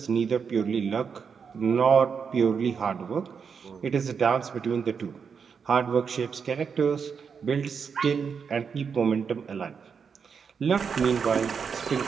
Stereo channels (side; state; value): left; quieter; 6.2 dB